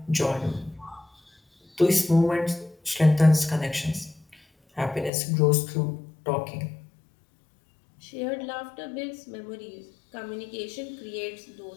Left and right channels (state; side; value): drops out; right; at 5.1 s